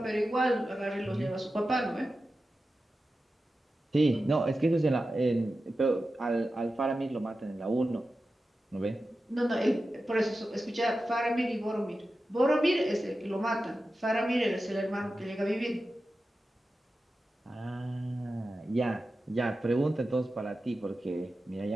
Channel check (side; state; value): both; normal; correlation 0.93